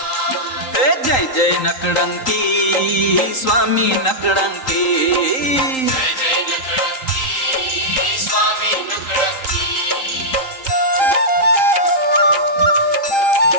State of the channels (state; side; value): late; right; 3.8 ms